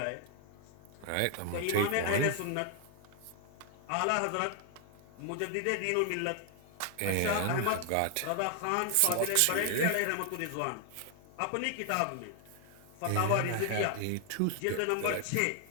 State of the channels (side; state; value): both; different; correlation 0.00